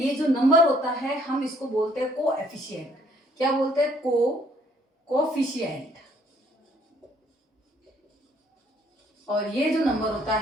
जो नंबर होता है हम इसको बोलते हैं कोएफिशिएंट। क्या बोलते हैं? कोएफिशिएंट। और ये जो नंबर होता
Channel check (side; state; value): both; normal; correlation 0.64